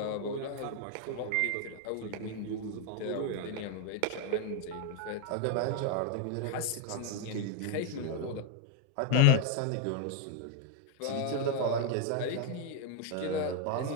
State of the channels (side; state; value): both; different; correlation 0.01